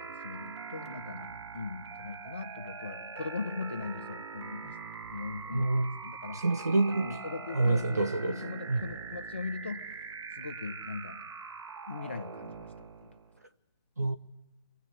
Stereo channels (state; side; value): inverted; both; correlation -0.80